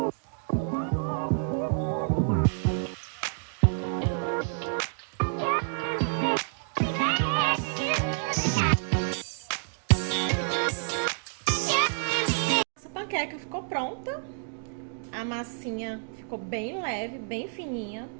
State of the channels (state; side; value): silent; left; digital silence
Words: Essa panqueca ficou pronta. A massinha ficou bem leve, bem fininha.